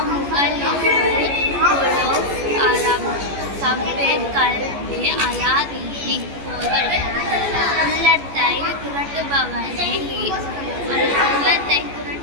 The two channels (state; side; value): late; left; 14 ms